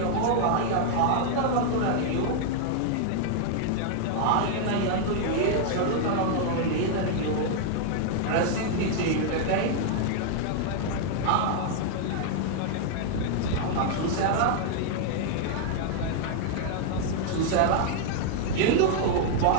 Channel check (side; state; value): both; different; correlation 0.00